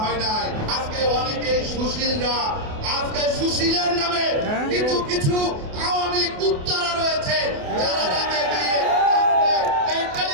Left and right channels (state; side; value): late; left; 28 ms